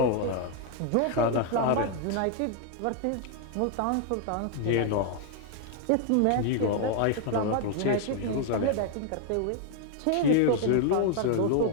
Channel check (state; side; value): different; both; correlation 0.00